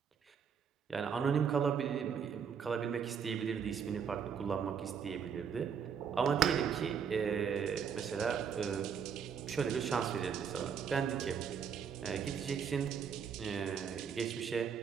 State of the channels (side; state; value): left; quieter; 7.0 dB